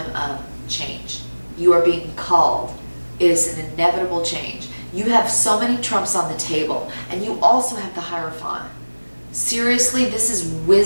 of change. You are being called. It is an inevitable change. You have so many trumps on the table, and you also have the Hierophant. Seriously, this is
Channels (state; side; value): inverted; both; correlation -1.00